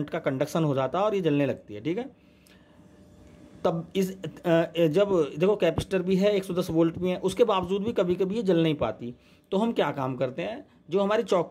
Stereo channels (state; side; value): identical; both; correlation 1.00